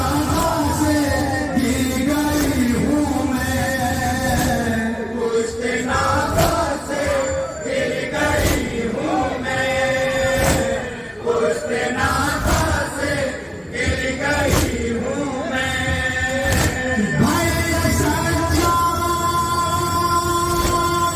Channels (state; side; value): identical; both; correlation 1.00